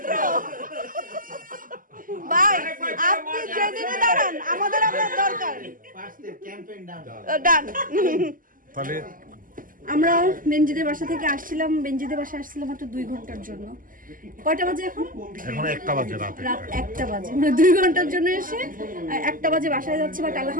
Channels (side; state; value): left; late; 0.40 ms